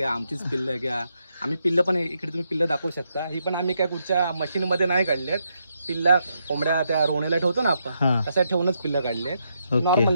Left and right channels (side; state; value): both; inverted; correlation -0.80